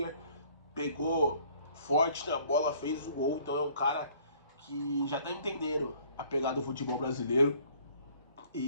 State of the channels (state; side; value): inverted; both; correlation -0.57